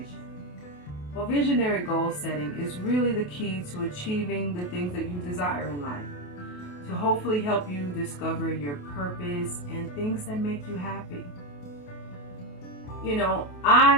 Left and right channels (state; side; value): late; right; 28 ms